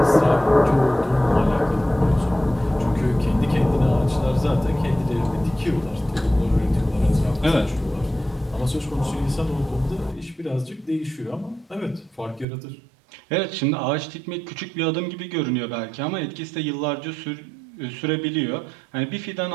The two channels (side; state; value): left; drops out; at 12.5 s